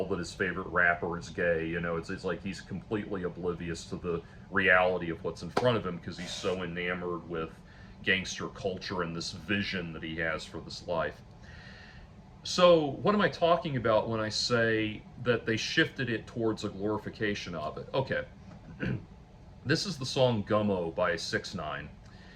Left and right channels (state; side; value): identical; both; correlation 1.00